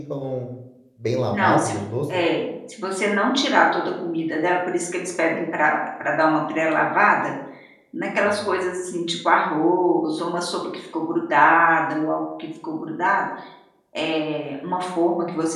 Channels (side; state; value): both; identical; correlation 1.00